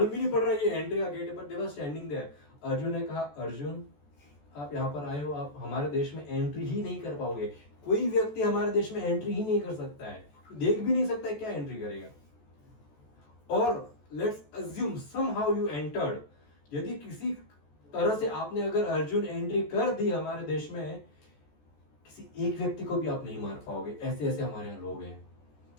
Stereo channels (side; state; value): right; late; 14 ms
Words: भी नहीं पड़ रहा ये एंट्री का गेट है, पर दे वर स्टैंडिंग देयर। अर्जुन ने कहा अर्जुन आप यहाँ पर आए हो, आप हमारे देश में एंट्री ही नहीं कर पाओगे। कोई व्यक्ति हमारे देश में एंट्री ही नहीं कर सकता है, देख भी नहीं सकता है, क्या एंट्री करेगा। और let's assume somehow you entered, यदि किसी तरह से आपने अगर अर्जुन एंट्री कर दी हमारे देश में, किसी एक व्यक्ति को भी आप नहीं मार पाओगे। ऐसे ऐसे हमारे यहाँ लोग हैं,